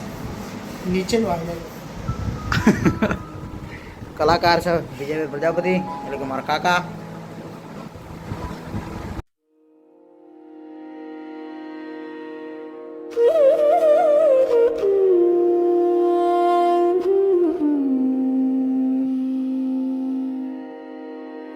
નીચે કલાકાર છે વિજયભાઈ પ્રજાપતિ એટલે કે મારા કાકા.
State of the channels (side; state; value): both; identical; correlation 1.00